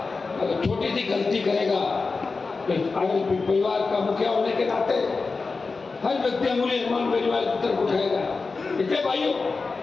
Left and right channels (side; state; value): right; quieter; 4.2 dB